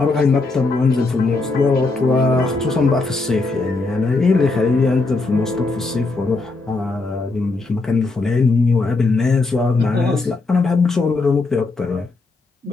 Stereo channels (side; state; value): right; quieter; 3.6 dB